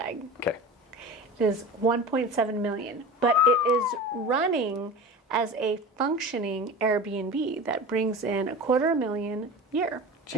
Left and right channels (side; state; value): both; normal; correlation 0.32